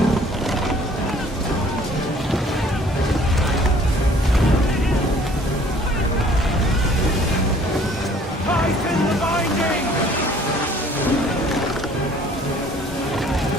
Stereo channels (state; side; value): normal; both; correlation 0.55